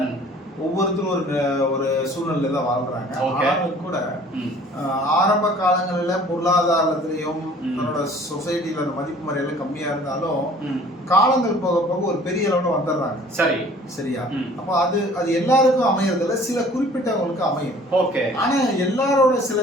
ஒவ்வொருத்தரும் ஒரு சூழ்நிலை தான் வாழ்றாங்க. ஆனாலும் கூட ஆரம்ப காலங்களில் பொருளாதாரத்திலையும் தன்னோட சொசைட்டில அந்த மதிப்பு மரியாதை கம்மியா இருந்தாலும் காலங்கள் போக போக ஒரு பெரிய அளவுல வந்துடுறாங்க. சரி, சரியா? அப்போ அது எல்லாருக்கும் அமையறதுல சில குறிப்பிட்டவங்களுக்கு அமையும். ஓகே. ஆனா எல்லாரோட சில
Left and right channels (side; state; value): both; normal; correlation 0.51